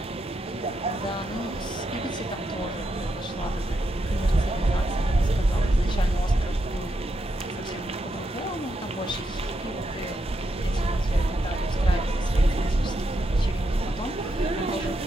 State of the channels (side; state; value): both; normal; correlation 0.82